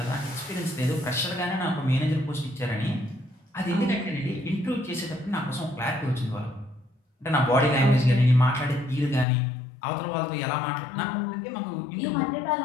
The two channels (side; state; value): right; drops out; at 9.2 s